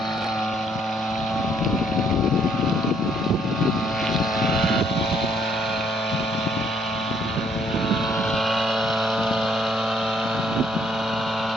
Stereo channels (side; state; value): both; normal; correlation 0.67